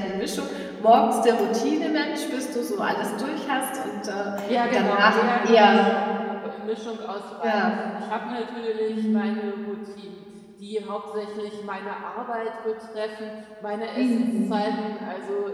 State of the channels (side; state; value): both; identical; correlation 1.00